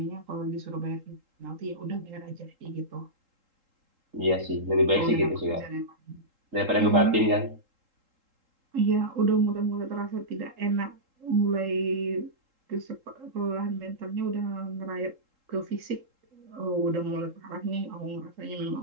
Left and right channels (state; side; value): late; left; 3.8 ms